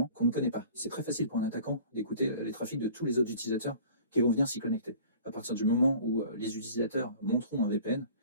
qu'on ne connaît pas. C'est très facile pour un attaquant d'écouter les trafics de tous les autres utilisateurs qui vont venir s'y connecter. À partir du moment où les utilisateurs monteront un VPN,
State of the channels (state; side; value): inverted; both; correlation -0.47